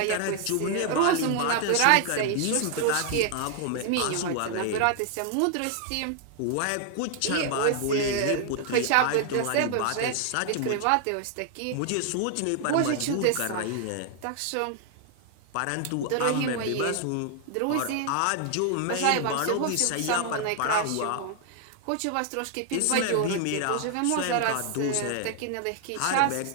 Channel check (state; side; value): different; both; correlation 0.00